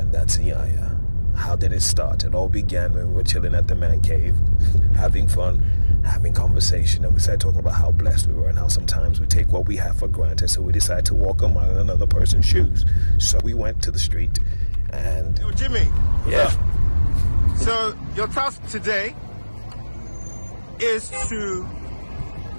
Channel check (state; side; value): inverted; both; correlation -1.00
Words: that's Iyanya. How did it start? It all began when we were chilling at the man cave, having fun, having conversation, and we started talking about how blessed we were and how sometimes we take what we have for granted, so we decided to walk a mile in another person's shoes. So we went to the street and... Yo, Jimmy. Yeah. So your task today is to